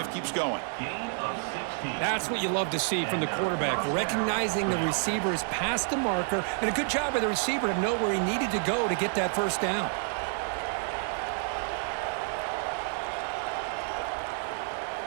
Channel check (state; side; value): silent; left; 55 dB below the other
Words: keeps going. That's what you love to see from the quarterback, recognizing the receivers past the marker, and a good job by the receiver to know where he needed to go to get that first down.